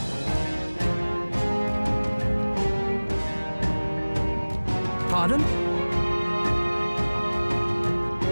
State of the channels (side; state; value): both; inverted; correlation -1.00